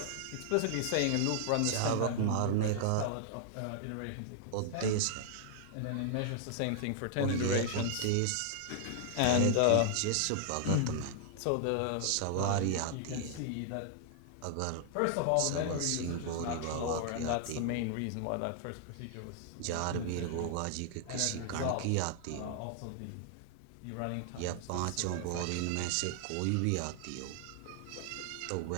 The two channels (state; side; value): different; both; correlation 0.00